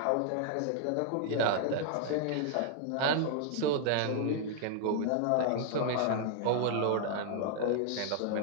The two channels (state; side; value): different; both; correlation -0.01